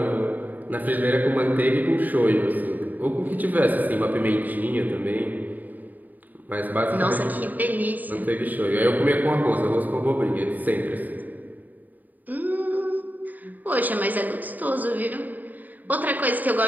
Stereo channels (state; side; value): late; left; 0.083 ms